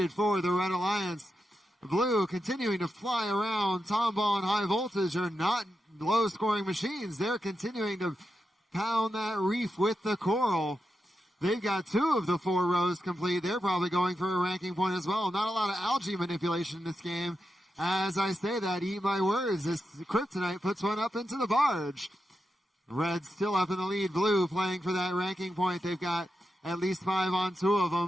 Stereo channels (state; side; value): normal; both; correlation 0.88